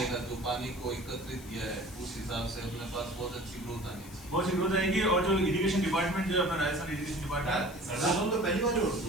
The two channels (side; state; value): left; noise; hiss, 19 dB below the sound